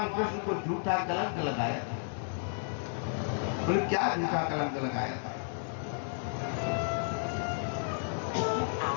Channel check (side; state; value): right; silent; digital silence